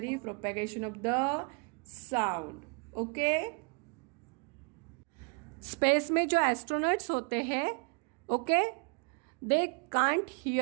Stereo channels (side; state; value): left; quieter; 35.4 dB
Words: for propagation of the sound. Okay, space में जो एस्ट्रोनॉट्स होते हैं, okay, they can't